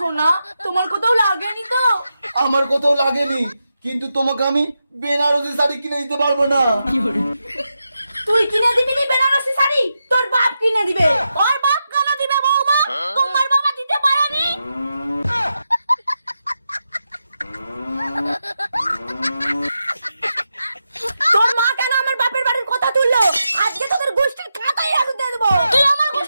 তোমার কোথাও লাগেনি তো? আমার কোথাও লাগেনি, কিন্তু তোমাকে আমি বেনারসি শাড়ি কিনে দিতে পারবো না। তুই কিনে দিবি নি বেনারসি শাড়ি? তোর বাপ কিনে দিবে। ওর বাপ কেন দিবে বৌমা? তোমার বাবা দিতে পারেনি? তোর মা কেন আমার বাপের বাড়ির কথা তুললো? আজকে তোদের গোষ্ঠীর কাঁটাই আগুন দিয়ে দেবো। তুই আমার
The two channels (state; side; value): inverted; both; correlation -0.88